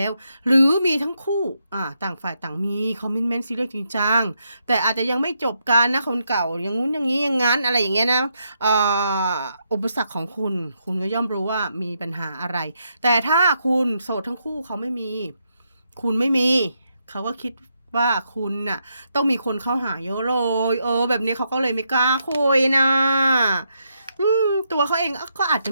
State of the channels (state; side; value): inverted; both; correlation -0.80